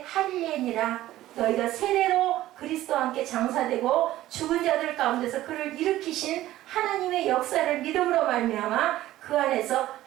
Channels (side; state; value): left; quieter; 14.9 dB